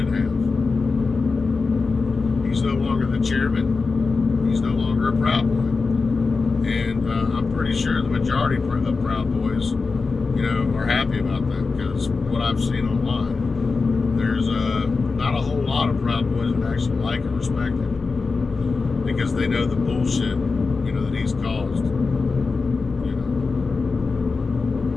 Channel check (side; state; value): right; quieter; 4.3 dB